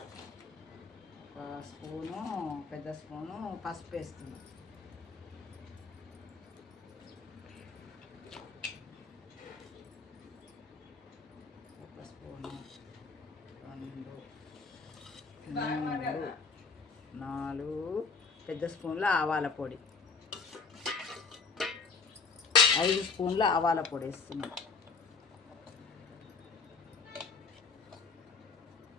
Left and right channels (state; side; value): quieter; right; 4.8 dB